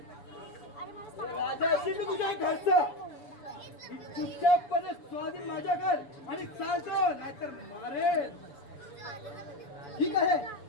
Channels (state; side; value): late; right; 7.0 ms